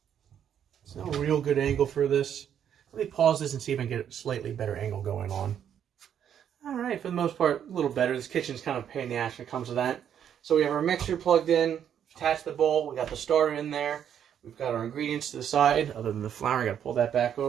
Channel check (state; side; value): quieter; left; 9.1 dB